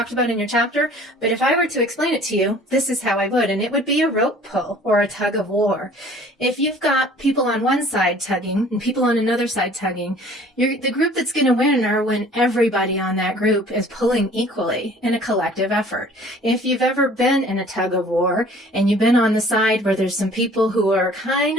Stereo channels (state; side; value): normal; both; correlation 0.51